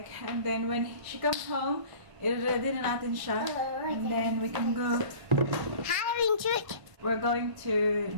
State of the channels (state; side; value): late; left; 1.5 ms